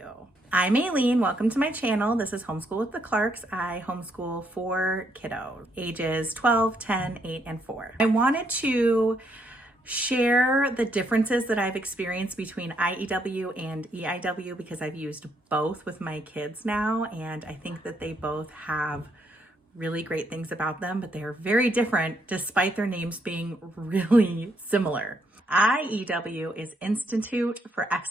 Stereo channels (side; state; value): both; normal; correlation 0.74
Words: I'm Aileen, welcome to my channel. This is Homeschool with the Clarks. I homeschool 4 kiddos, ages 12, 10, 8, and 4. I wanted to share the differences that I've experienced between IEW and EIW because I've used both with my kids now, and I think that they both have really great things about them, but they are very different despite their names being really similar. IEW is Institute for